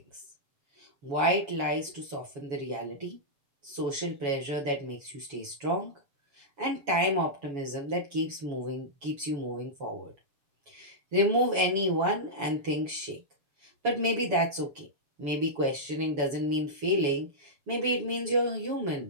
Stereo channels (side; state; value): left; late; 7.1 ms